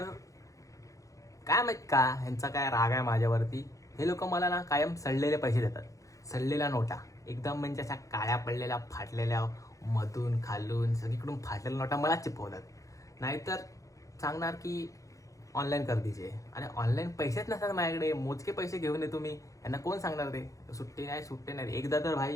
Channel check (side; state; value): right; late; 0.16 ms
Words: काय माहीत का ह्यांचा काय राग आहे माझ्यावरती. हे लोक मला ना कायम सडलेले पैसे देतात, सडलेल्या नोटा, एकदम म्हणजे अशा काळ्या पडलेल्या फाटलेल्या, मधून खालून सगळीकडून फाटलेल्या नोटा मला चिपवतात. नाहीतर सांगणार की ऑनलाईन कर दीजिए. आणि ऑनलाईन पैसेच नसतात माझ्याकडे, मोजके पैसे घेऊन येतो मी. यांना कोण सांगणार ते सुट्टे नाही. एकदा तर